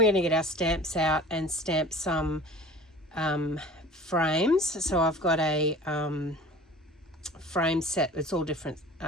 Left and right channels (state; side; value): normal; both; correlation 0.42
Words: going to get our stamps out and stamp some frames. So I've got a frame set, it's all different